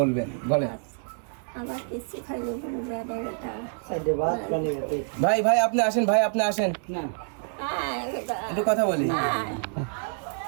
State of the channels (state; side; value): silent; left; 60 dB below the other